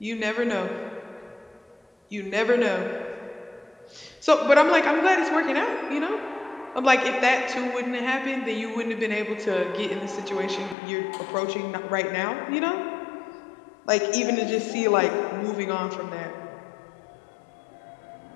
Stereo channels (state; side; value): drops out; right; at 10.8 s